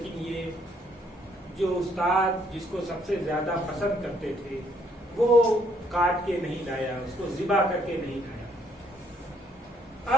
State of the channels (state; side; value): normal; both; correlation 0.68